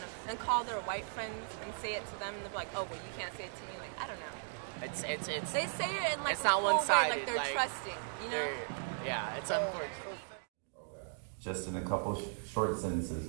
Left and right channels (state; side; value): silent; left; digital silence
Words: know, and call their white friends and say it to them, and they're like, oh, well, you can't say it to me. Like, I don't know. It's They say it in, like, it's a not cool way, one-sided. like they're trusting, you know? Yeah, it's unfortunate. Just in a couple short